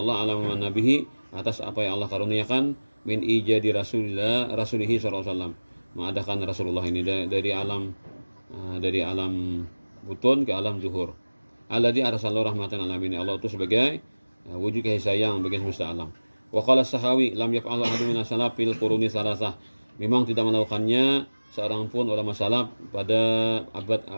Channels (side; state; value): both; inverted; correlation -1.00